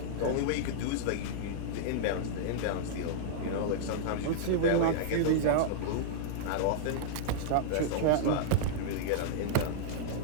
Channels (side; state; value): both; different; correlation -0.02